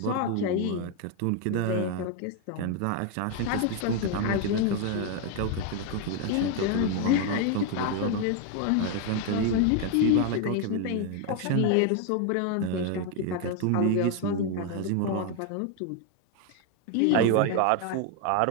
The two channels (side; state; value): both; different; correlation 0.01